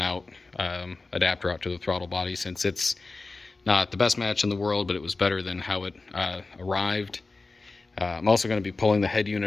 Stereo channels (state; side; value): quieter; right; 3.6 dB